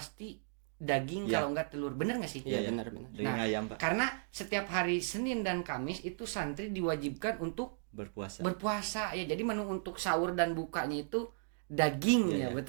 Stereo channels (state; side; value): silent; left; digital silence